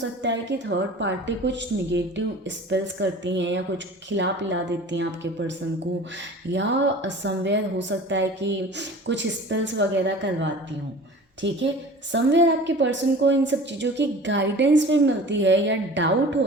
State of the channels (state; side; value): normal; both; correlation 0.41